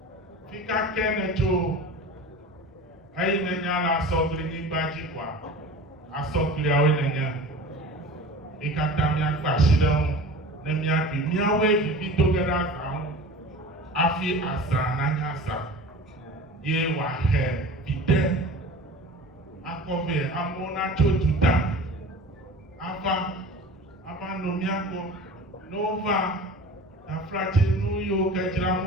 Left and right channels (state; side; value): normal; both; correlation 0.38